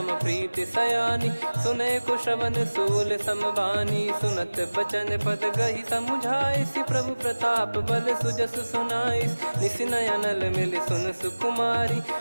प्रीति सयानी, सुनय को श्रवण सूल समबानी। सुनत बचन पद गहि समुझाइसि, प्रभु प्रताप बल सुजस सुनाइस। निसिनय अनल मिल सुन सुकुमारी,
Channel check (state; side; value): inverted; both; correlation -1.00